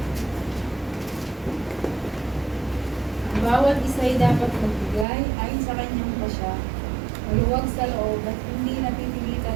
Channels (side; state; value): left; drops out; at 5.1 s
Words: Ang bawat isa ay dapat magbigay ayon sa kanyang pasya, maluwag sa loob at hindi